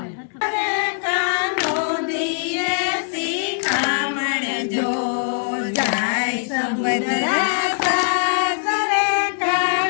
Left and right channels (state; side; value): silent; right; 65 dB below the other